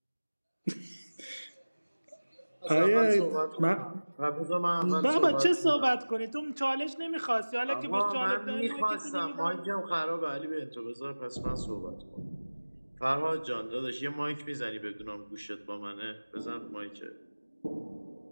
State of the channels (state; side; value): inverted; both; correlation -1.00